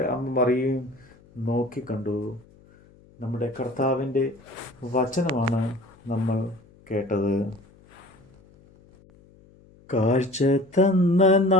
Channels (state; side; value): noise; left; hum, 27 dB below the sound